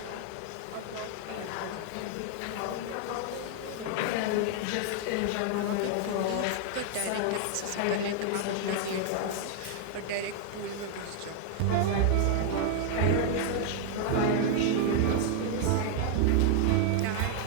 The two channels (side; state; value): both; different; correlation 0.00